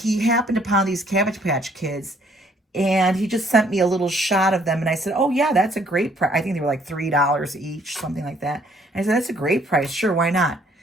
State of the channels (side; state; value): both; normal; correlation 0.64